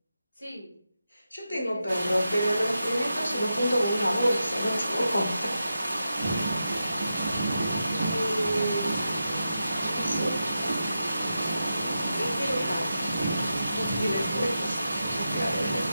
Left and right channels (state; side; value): inverted; both; correlation -0.89